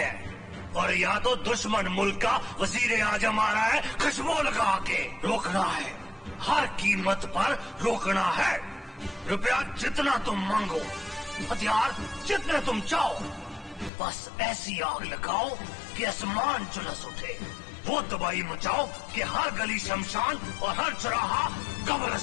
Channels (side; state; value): right; drops out; at 13.9 s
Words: और या तो दुश्मन मुल्क का वजीर आजम आ रहा है खुशबू लगा के। रोकना है, हर कीमत पर रोकना है। रुपया जितना तुम मांगो, हथियार जितने तुम चाहो, बस ऐसी आग लगाओ कि आसमान झुलस उठे। वो तबाही मचाओ कि हर गली शमशान और हर चौराहा